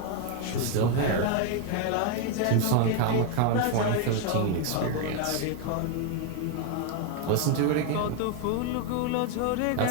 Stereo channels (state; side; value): different; both; correlation 0.01